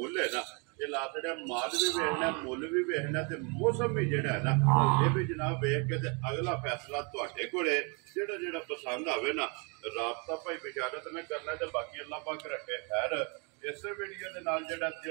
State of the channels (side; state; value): left; quieter; 34.0 dB